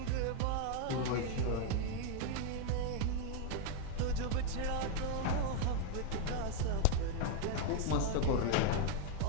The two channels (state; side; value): different; both; correlation 0.01